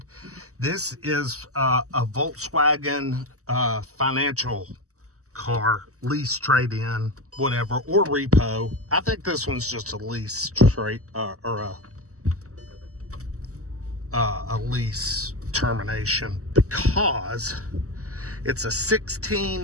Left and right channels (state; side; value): late; left; 0.66 ms